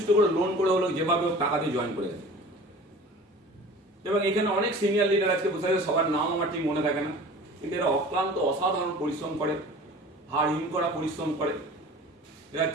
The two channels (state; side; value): normal; both; correlation 0.42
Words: করে লোন করে হলো যেভাবে হোক টাকা দিয়ে জয়েন করে গেছে। এবং এখানে অনেক সিনিয়র লিডার আজকে বসে আছে, সবার নাম আমার ঠিক মনে থাকে না, কিন্তু এরা অক্লান্ত অসাধারণ পরিশ্রম করে, হাড় হিম করা পরিশ্রম করে, এরা